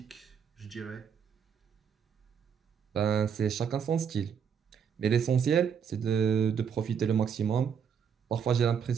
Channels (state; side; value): quieter; left; 7.3 dB